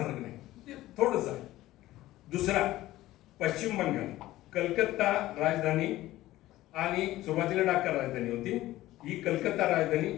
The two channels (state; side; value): quieter; right; 16.0 dB